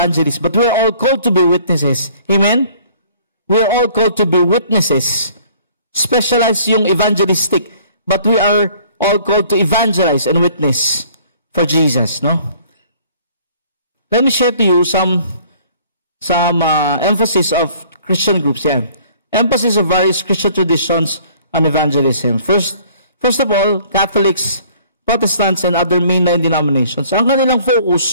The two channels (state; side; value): inverted; both; correlation -0.56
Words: but we're all called to be witnesses. Amen? We're all called to be witnesses. Specialized yung evangelistic, but we are all called to evangelize and witness for Jesus, no? Let me share to you some emphasis of Christian groups. Yeah. Emphasis of various Christian traditions on evangelism. First of all, Catholics, Protestants, and other mainline denominations. Ang kanilang